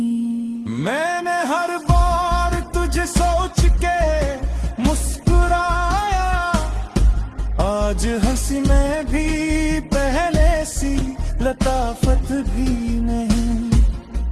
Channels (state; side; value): identical; both; correlation 1.00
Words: मैंने हर बार तुझे सोच के मुस्कुराया, आज हंसी में भी पहले सी लताफत भी नहीं।